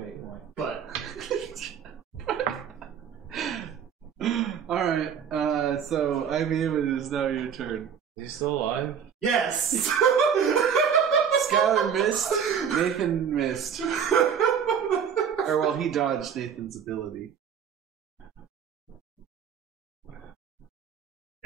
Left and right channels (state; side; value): quieter; left; 7.6 dB